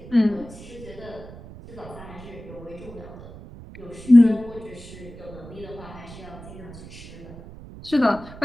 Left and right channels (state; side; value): noise; right; rumble, 16 dB below the sound